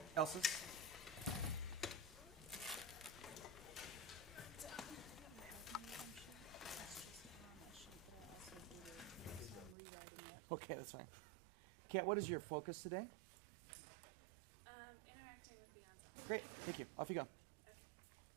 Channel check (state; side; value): drops out; left; at 9.8 s